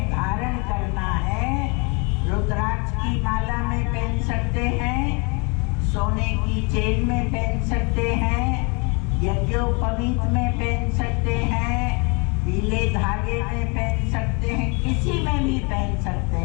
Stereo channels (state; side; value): quieter; right; 31.8 dB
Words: धारण करना है, रुद्राक्ष की माला में पहन सकते हैं, सोने की चेन में पहन सकते हैं, यज्ञोपवीत में पहन सकते हैं, पीले धागे में पहन सकते हैं, किसी में भी पहन सकते